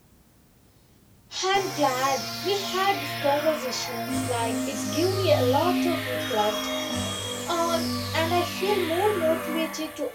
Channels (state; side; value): identical; both; correlation 1.00